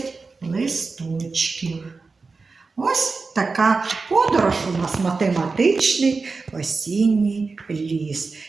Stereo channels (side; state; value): left; quieter; 4.2 dB